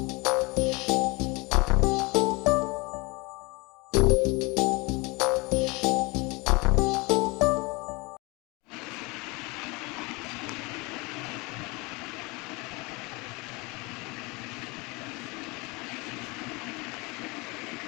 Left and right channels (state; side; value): quieter; right; 26.1 dB